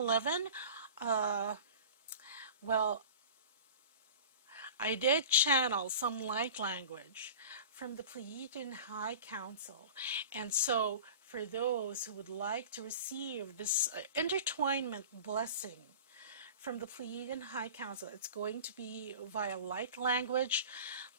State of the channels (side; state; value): both; inverted; correlation -0.38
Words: well, I did channel some light language from the Pleiadian High Council. And so for those who would like to receive this intertwinement blessing from the Pleiadian High Council, it's going to be via light language.